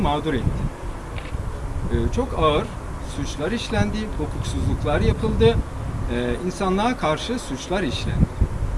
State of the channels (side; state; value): both; identical; correlation 1.00